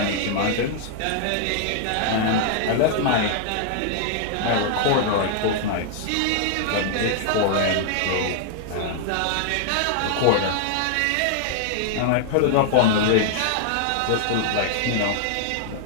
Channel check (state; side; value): different; both; correlation 0.00